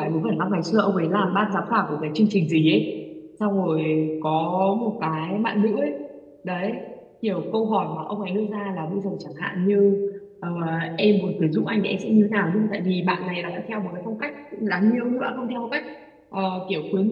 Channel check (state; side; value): identical; both; correlation 1.00